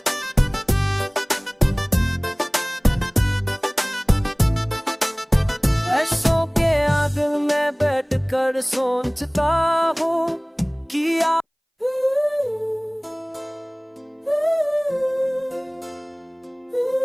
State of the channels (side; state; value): both; identical; correlation 1.00